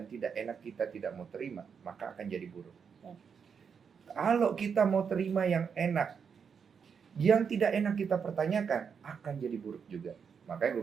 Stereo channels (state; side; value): quieter; left; 6.6 dB